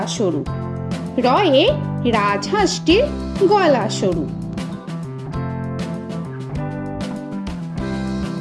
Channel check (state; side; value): identical; both; correlation 1.00